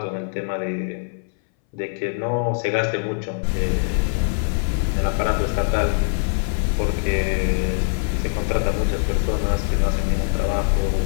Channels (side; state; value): right; silent; 62 dB below the other